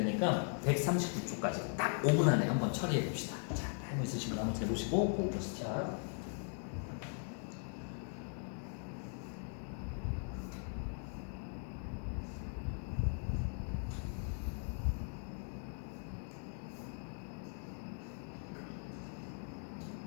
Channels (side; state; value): right; silent; 51 dB below the other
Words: 139초까지 딱 5분 안에 한번 처리해 봅시다. 자, 타이머 있으신 분 한번 재보시고, 꼭 시작.